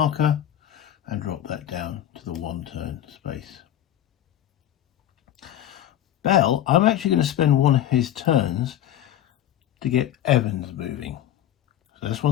and drop that down to the 1 turn space. Bell, I'm actually going to spend one of his turns to get Evans moving. So that's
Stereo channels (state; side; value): quieter; right; 11.7 dB